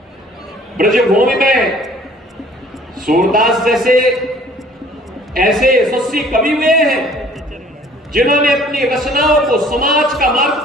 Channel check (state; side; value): normal; both; correlation 0.54